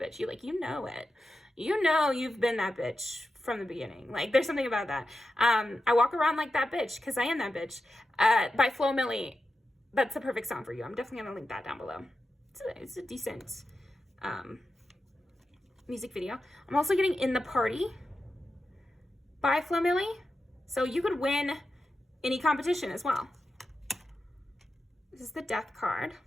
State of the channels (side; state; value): both; normal; correlation 0.91